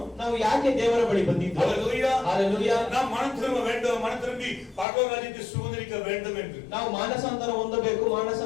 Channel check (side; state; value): right; drops out; at 4.9 s